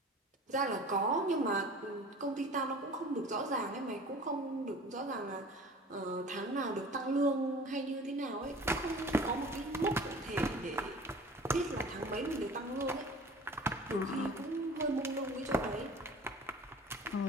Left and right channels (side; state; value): both; normal; correlation 0.43